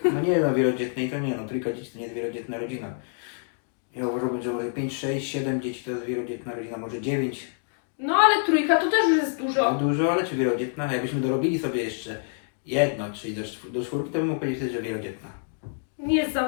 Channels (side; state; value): right; silent; digital silence